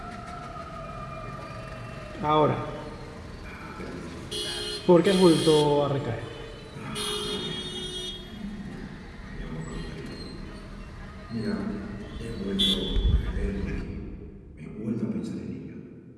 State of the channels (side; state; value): both; identical; correlation 1.00